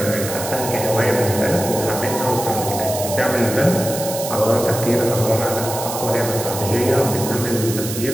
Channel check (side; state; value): right; noise; hiss, 7 dB below the sound